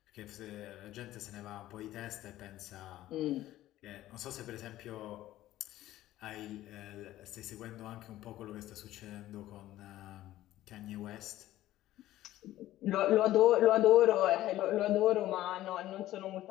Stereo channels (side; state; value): right; quieter; 14.6 dB